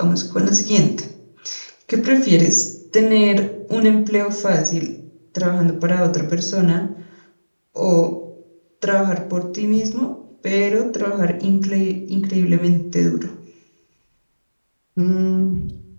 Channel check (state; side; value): inverted; both; correlation -1.00